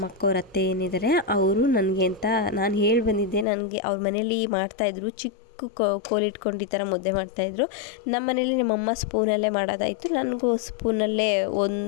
ಅಕ್ಕವ್ರ ಅತ್ತೆ ಏನಿದ್ದಾರೆ ಅವರು ನನಗೆ ಅಂತ ನಾನು ಹೇಳಿ ಬಂದಿದ್ದೆ. ನನಗೆ ಅವ್ರ ಮನೇಲಿ ಮಾಡ್ತಾಯಿದ್ರು, ಚಿಕ್ಕ ಕೋಲಿಟ್ಕೊಂಡು ಈ ಥರ ಮುದ್ದೆ ಮಾಡ್ತಾಯಿದ್ರು. ನಮ್ಮ ಮನೇಲಿ ನಮ್ಮಮ್ಮ ಸ್ಪೂನಲ್ಲೇ ಮಾಡೋದಾಯಿತು, ನನಗೂ ಸ್ಪೂನಲ್ಲೇ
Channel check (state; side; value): drops out; right; at 3.5 s